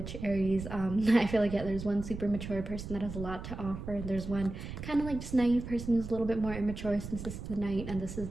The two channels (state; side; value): noise; right; rumble, 9 dB below the sound